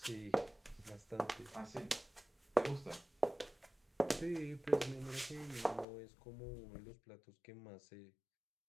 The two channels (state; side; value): drops out; right; at 5.9 s